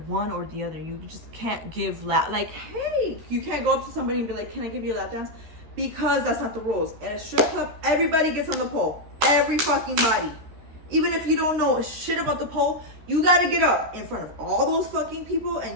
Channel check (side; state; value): left; late; 13 ms